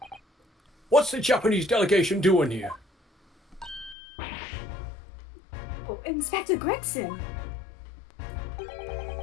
What's the Japanese delegation doing here? Oh, Inspector Gregson.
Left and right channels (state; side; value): drops out; right; at 4.0 s